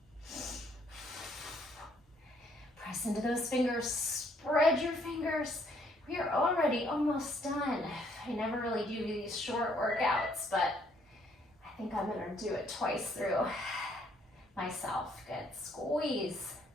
Press into those fingers, spread your fingers. We are already almost done. I never really do these short workouts, but I think I'm gonna do it twice through myself. Good, squeeze.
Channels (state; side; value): normal; both; correlation 0.67